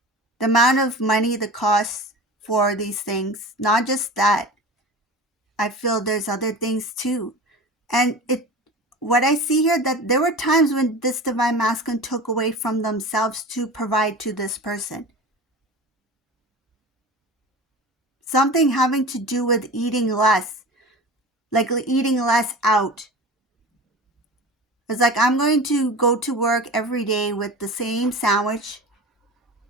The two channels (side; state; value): both; normal; correlation 0.34